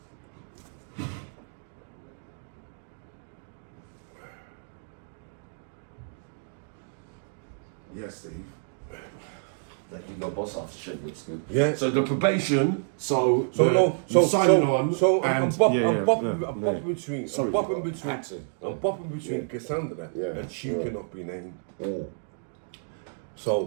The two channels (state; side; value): silent; left; digital silence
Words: Yes, Steve. That you got boss after shit looks good. Yeah. So the probation. So signing on. So and I'm bopping between. Sorry, I'm bopping between. accent. I'm bopping between Cassandra and she cannot be named.